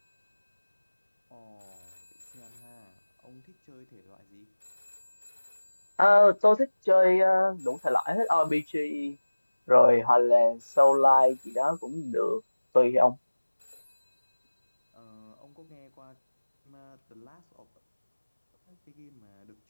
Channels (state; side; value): inverted; both; correlation -1.00